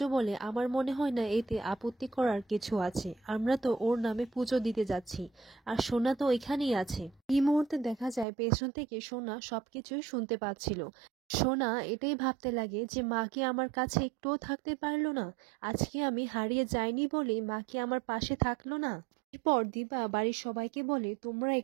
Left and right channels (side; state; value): left; drops out; at 8.2 s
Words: বলে, আমার মনে হয় না এতে আপত্তি করার কিছু আছে, আমরা তো ওর নামে পুজো দিতে যাচ্ছি আর সোনা তো এখানেই আছে। এই মুহূর্তে দেখা যায় পেছন থেকে সোনা সবকিছুই শুনতে পাচ্ছিল। সোনা এটাই ভাবতে লাগে যে মা কি আমার কাছে একটুও থাকতে পারলো না, আজকে আমি হারিয়ে যাইনি বলে মা কি আমার পাশে থাকলো না। এরপর দীপা বাড়ির সবাইকে বলে, তোমরা